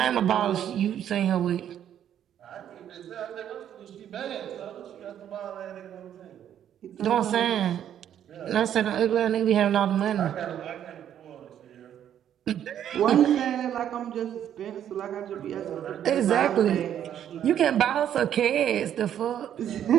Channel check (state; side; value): quieter; left; 10.1 dB